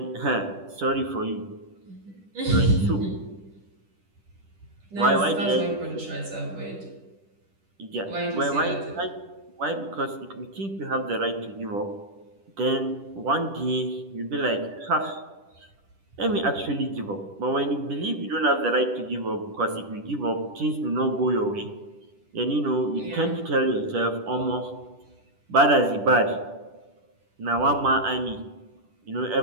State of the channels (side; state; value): left; late; 10 ms